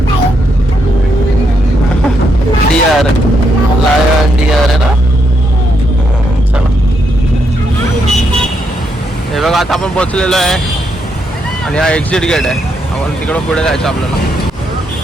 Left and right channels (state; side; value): normal; both; correlation 0.78